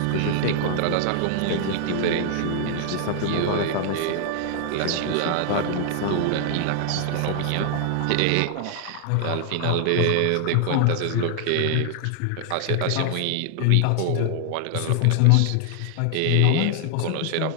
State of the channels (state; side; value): different; both; correlation 0.00